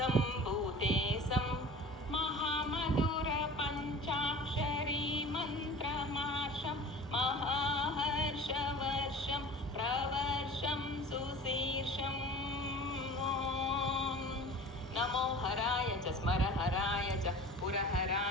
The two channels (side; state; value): both; normal; correlation 0.40